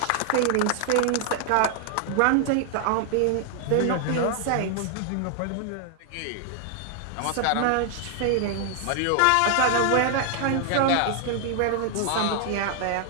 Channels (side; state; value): both; different; correlation 0.00